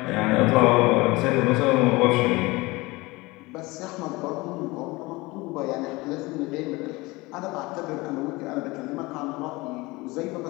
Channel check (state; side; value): quieter; right; 22.6 dB